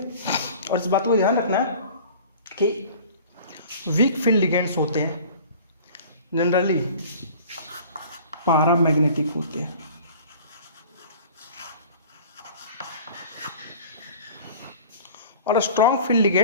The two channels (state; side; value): inverted; both; correlation -0.44